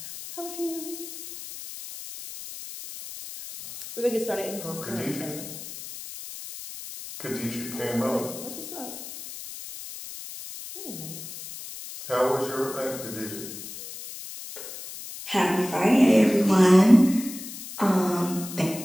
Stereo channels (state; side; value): noise; left; hiss, 11 dB below the sound